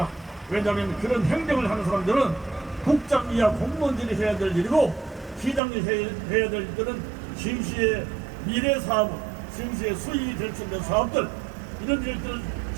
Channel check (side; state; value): left; drops out; at 5.6 s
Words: 왜냐하면 그런 행정을 하는 사람들은 국장 이하 공무원들이 해야 될 일이고, 시장이 해야 될 일들은 시흥시의 미래 사업, 시흥시의 수익이 될 수 있는 사업들, 이런 일들,